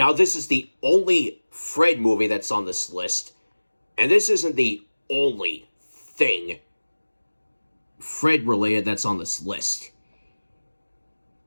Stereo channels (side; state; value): both; inverted; correlation -1.00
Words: this is the only Fred movie that's on this list, and this isn't the only thing Fred-related that's on this list.